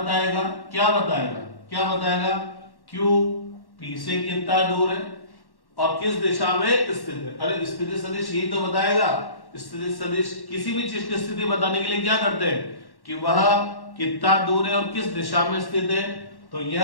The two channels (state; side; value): late; right; 1.1 ms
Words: Q P से कितना दूर है और किस दिशा में स्थित है। अरे स्थिति सदिश यही तो बताएगा। स्थिति सदिश किसी भी चीज की स्थिति बताने के लिए क्या करते हैं कि वह कितना दूर है और किस दिशा में स्थित है। तो